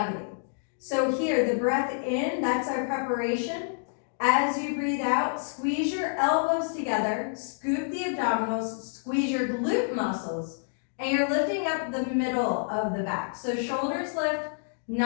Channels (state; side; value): silent; right; digital silence